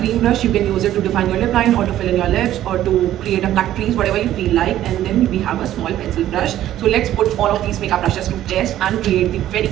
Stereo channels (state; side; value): quieter; left; 12.7 dB